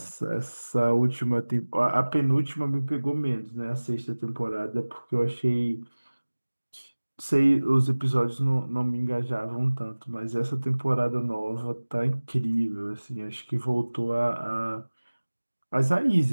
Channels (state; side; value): inverted; both; correlation -1.00